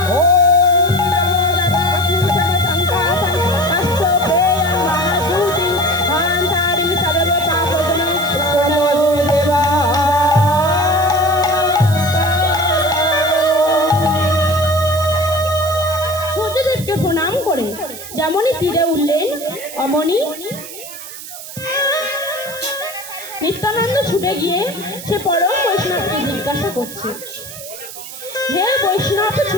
প্রণাম করে যেমনই তীরে উঠলেন অমনি নিত্যানন্দ ছুটে গিয়ে সে পরম বৈষ্ণবকে জিজ্ঞাসা করছে, হে বৈষ্ণব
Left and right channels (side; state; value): right; noise; hiss, 12 dB below the sound